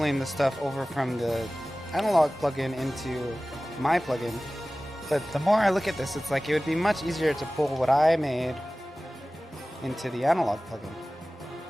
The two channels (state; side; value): normal; both; correlation 0.97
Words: the stuff over from the analog plugin into my plugin, but the more I look at this, it's like it would be much easier to pull what I made into the analog plugin,